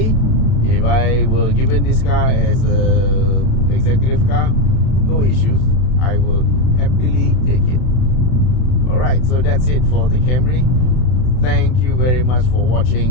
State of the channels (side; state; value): right; late; 31 ms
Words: if I were given this car as a executive car, no issues. I will happily take it. Alright, so that's it for the Camry. Thank you very much for